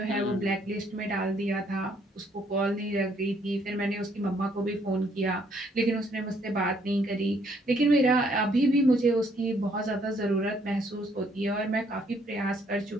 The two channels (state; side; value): normal; both; correlation 0.67